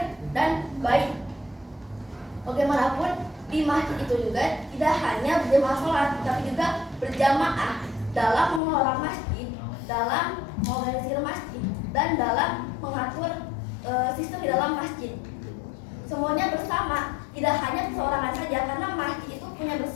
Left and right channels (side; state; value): right; drops out; at 8.6 s